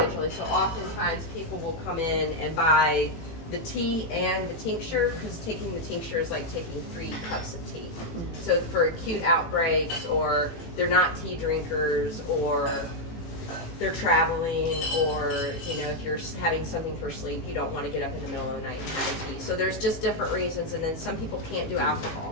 So oftentimes people will come in and buy the tea and the tincture, because taking the tincture is like taking 3 cups of tea. So for acute outbreaks, or they're not tea drinkers, or they're traveling, or you know, if you're having something for sleep, you don't want to get up in the middle of the night and have a tea. So there's just different reasons. And then some people can't do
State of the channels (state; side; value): late; right; 18 ms